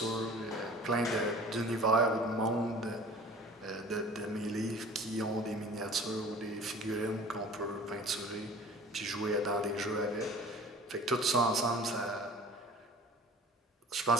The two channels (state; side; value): normal; both; correlation 0.44